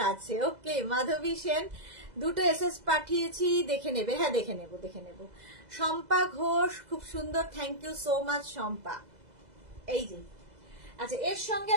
আছে। ওকে, মাধবী সেন, দুটো এসএস পাঠিয়েছি, দেখে নেবে। হ্যাঁ দেখে নেব। শম্পা ঘোষ, খুব সুন্দর, thank you so much Shampa. এই যে আচ্ছা, এর সঙ্গে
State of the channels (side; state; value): left; late; 2.0 ms